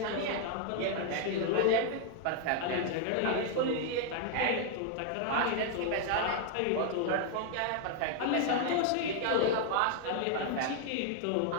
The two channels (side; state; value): both; different; correlation 0.00